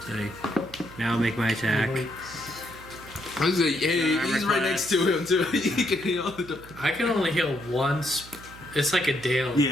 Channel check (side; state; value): right; noise; hum, 18 dB below the sound